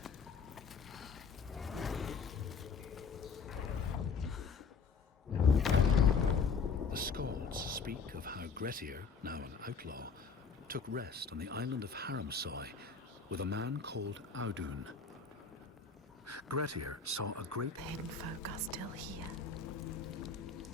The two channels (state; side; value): quieter; right; 5.3 dB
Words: The Skalds speak of how Grettir, now an outlaw, took rest on the island of Haramsoy with a man called Audun. Grettir saw a great The hidden folk are still here.